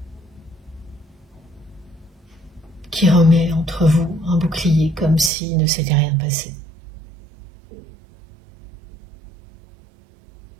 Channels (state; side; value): drops out; left; at 5.3 s